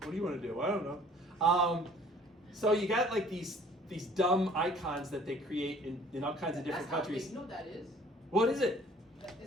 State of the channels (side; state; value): both; normal; correlation 0.54